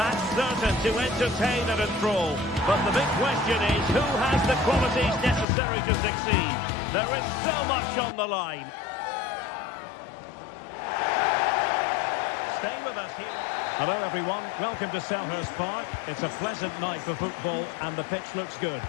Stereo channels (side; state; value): right; drops out; at 5.5 s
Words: certain to entertain and enthrall. But the big question is, who has the qualities necessary to succeed? There is so much on the line. Stay with us here. Hello everyone, welcome to Selhurst Park. It's a pleasant night for football and the pitch looks good.